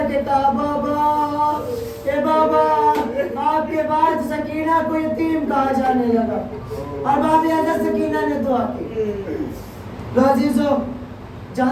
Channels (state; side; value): identical; both; correlation 1.00